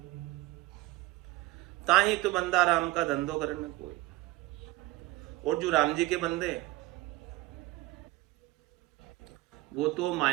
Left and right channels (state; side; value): quieter; left; 19.6 dB